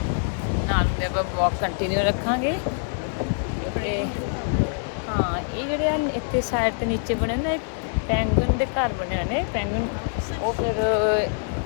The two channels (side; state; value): right; silent; digital silence